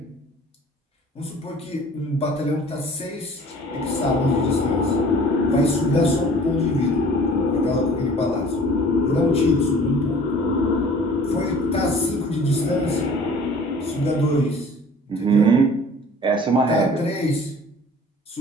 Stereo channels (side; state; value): both; normal; correlation 0.48